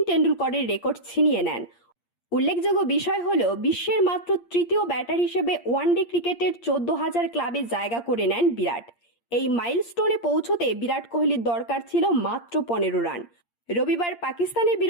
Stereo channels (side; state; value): right; late; 8.6 ms